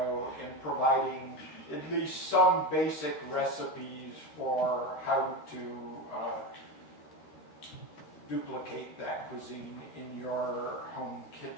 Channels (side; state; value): right; late; 13 ms